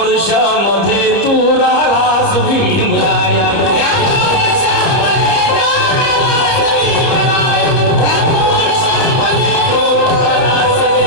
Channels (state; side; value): late; right; 29 ms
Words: तू राहिलास भीमराया